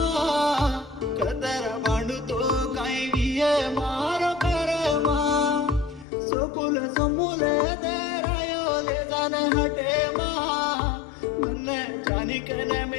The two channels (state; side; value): drops out; right; at 6.1 s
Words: कदर भांडतो काय विय मारो करमा सोकुल समूल दरायो ले जान हटे मा मन जानिकन